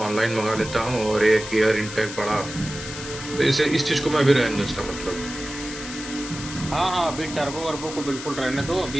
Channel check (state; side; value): noise; left; hiss, 10 dB below the sound